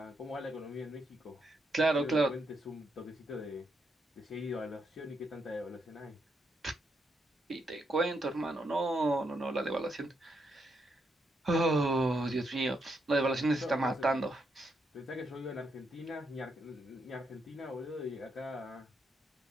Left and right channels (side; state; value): both; normal; correlation 0.79